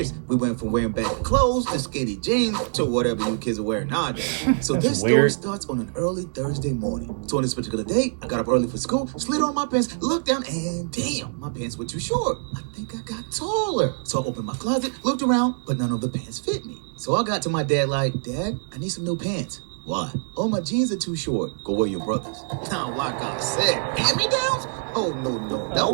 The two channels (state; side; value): silent; left; digital silence